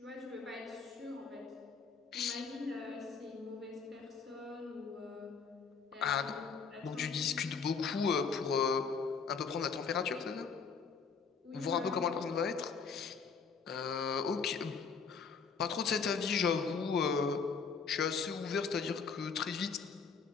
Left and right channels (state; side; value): quieter; right; 5.5 dB